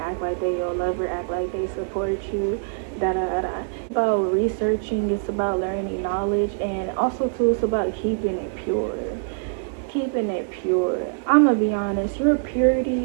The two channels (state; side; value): silent; left; 60 dB below the other